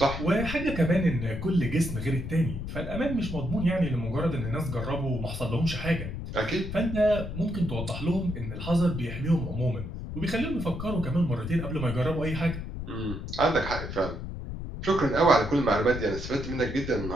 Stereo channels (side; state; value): left; noise; rumble, 7 dB below the sound